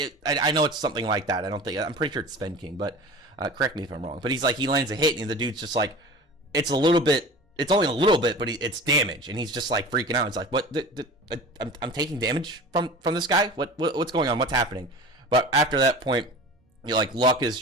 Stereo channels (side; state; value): both; normal; correlation 0.36